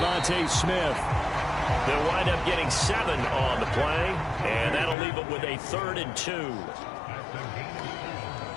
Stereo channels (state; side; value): drops out; right; at 5.0 s